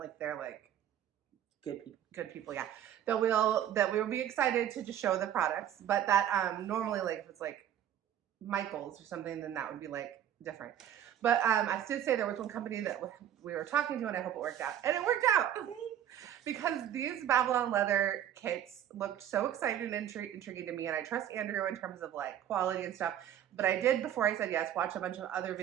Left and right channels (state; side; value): quieter; left; 10.5 dB